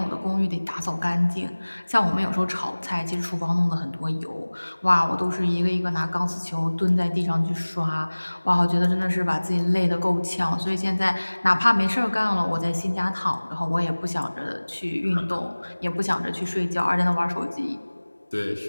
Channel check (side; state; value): both; inverted; correlation -1.00